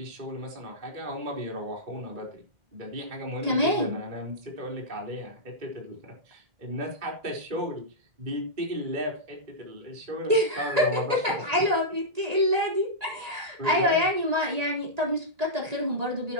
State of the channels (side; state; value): left; late; 1.8 ms